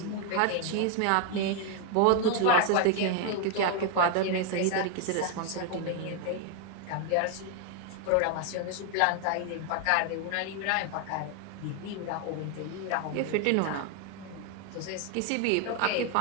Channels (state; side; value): different; both; correlation 0.01